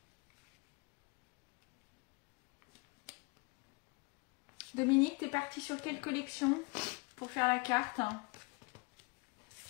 Dominique, tu es parti sur quelle collection pour faire la carte?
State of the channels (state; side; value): quieter; right; 29.1 dB